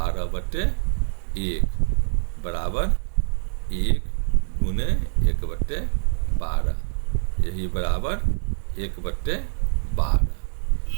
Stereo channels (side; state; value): left; silent; digital silence